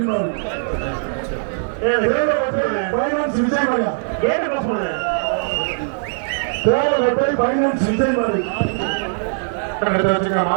ஃபைனான்ஸ் விஜய் மாடியா கேட்டு பாஸ் பண்ணுங்க. தேவைப்பட்டு ஃபைனான்ஸ் விஜய் மாடி எடுத்து வச்சுங்க.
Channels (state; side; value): silent; left; 66 dB below the other